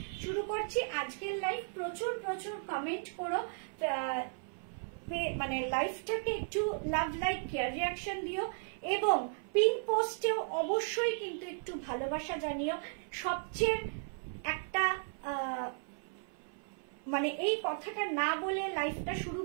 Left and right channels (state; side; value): silent; left; 54 dB below the other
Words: শুরু করছি আজকের লাইভ। প্রচুর প্রচুর কমেন্ট করো, মানে লাইভটাকে একটু লাভ, লাইক, কেয়ার, রিয়াকশন দিও এবং পিন পোস্টেও অবশ্যই কিন্তু একটু ভালোবাসা জানিও। সবচেয়ে একটা মানে এই কথাটা না বলে লাইভটা শুরু